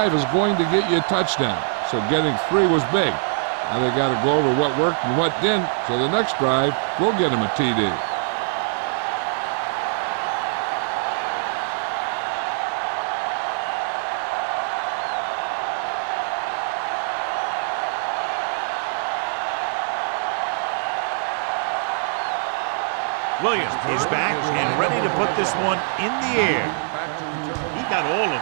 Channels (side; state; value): left; silent; digital silence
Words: is going to get you a touchdown, so getting 3 was big. Now they got to go over what worked and what didn't, so the next drive will get them a TD. Williams is back and ready to put this one in the air. He got all of